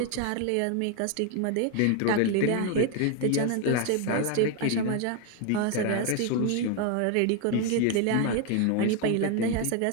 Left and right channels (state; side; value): different; both; correlation 0.01